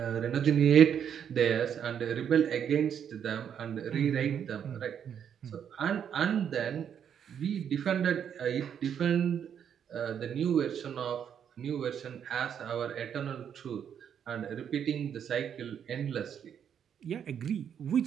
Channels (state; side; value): quieter; left; 8.4 dB